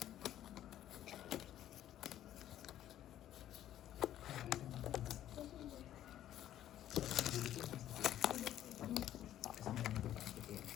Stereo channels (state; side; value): quieter; right; 12.1 dB